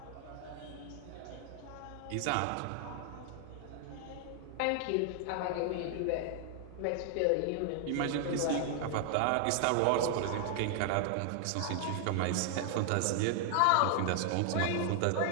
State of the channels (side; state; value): both; different; correlation 0.00